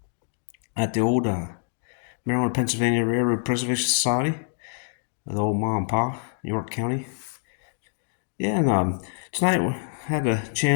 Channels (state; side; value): silent; right; digital silence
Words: at the old Maryland, Pennsylvania Railroad Preservation Society, the old Ma and Pa, York County. Yeah, and tonight we had a